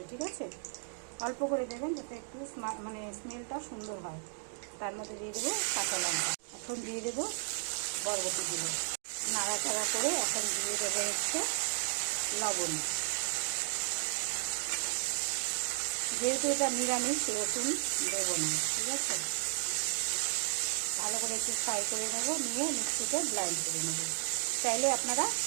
ঠিক আছে, অল্প করে দেবেন যাতে একটু মানে স্মেলটা সুন্দর হয়। তার মধ্যে দিয়ে দেবো কাঁচা লঙ্কা। এখন দিয়ে দেবো বরবটিগুলো, নাড়াচাড়া করে এখন দিয়ে দেবো হচ্ছে লবণ। যেহেতু এটা নিরামিষ, রসুন দেবো না। ঠিক আছে, ভালো করে একটু ফ্রাই করে নেব, নিয়ে মিক্সিতে ব্লেন্ড করে নেব। চাইলে আপনারা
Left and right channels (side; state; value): left; silent; 55 dB below the other